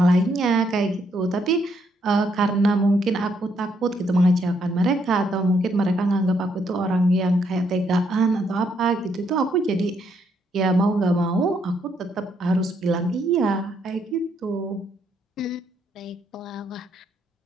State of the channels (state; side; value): normal; both; correlation 0.73